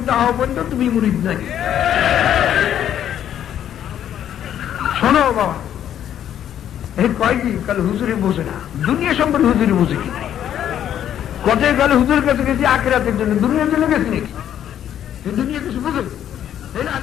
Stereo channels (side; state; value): right; quieter; 10.4 dB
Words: না হওয়া পর্যন্ত তুমি মুরিদ নাই। শোনো বাবা, এই কয় কি কাল হুজুরে বোঝে না, দুনিয়া সম্পর্কে হুজুরে বোঝে কি? কথায় গেলে হুজুরের কাছে গেছি আখিরাতের জন্য, দুনিয়ার জন্য গেছি নাকি? দুনিয়া কিছু বোঝো? এই